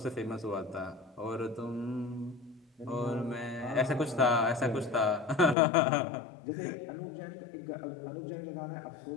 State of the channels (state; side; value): drops out; right; at 5.6 s